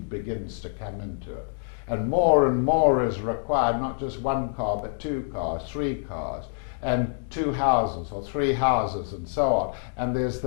begins to come into it, and more is required, not just one car, but 2 cars, 3 cars, and 2 houses or 3 houses and so on. And there's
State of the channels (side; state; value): right; silent; digital silence